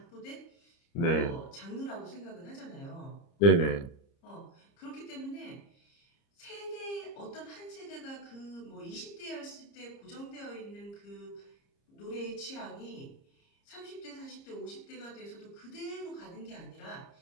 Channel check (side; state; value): right; late; 30 ms